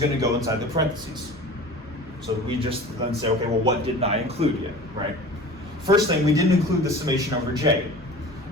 to go inside the parentheses. So we just then say, okay, well, what didn't I include yet, right? First thing, we didn't include the summation over j.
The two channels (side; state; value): both; normal; correlation 0.39